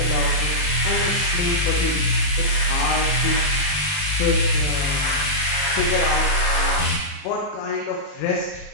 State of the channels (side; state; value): right; late; 40 ms